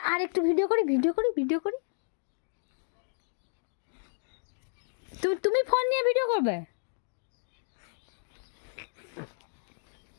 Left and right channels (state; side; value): silent; right; digital silence